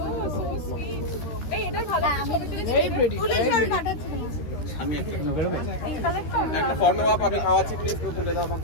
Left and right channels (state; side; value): late; right; 13 ms